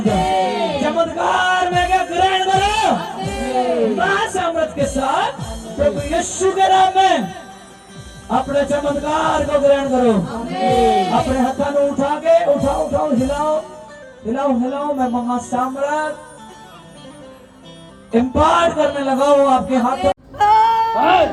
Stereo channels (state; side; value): identical; both; correlation 1.00